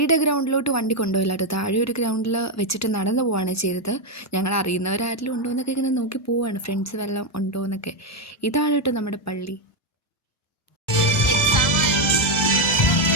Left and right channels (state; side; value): normal; both; correlation 0.05